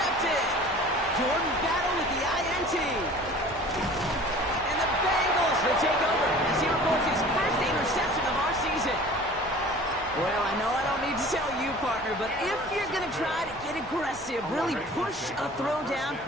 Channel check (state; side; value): noise; left; hum, 24 dB below the sound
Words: Jordan Battle with the INT. And the Bengals will take over as he records his first interception of our season. Well, I know I don't need to tell you, partner, but if you're going to try to get aggressive, really push a throw